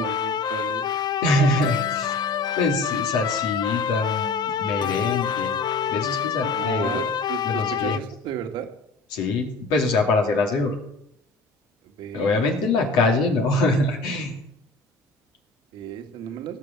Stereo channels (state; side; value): quieter; right; 3.3 dB